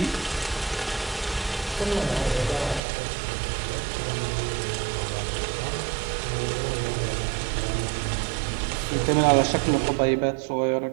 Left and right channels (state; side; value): drops out; left; at 2.8 s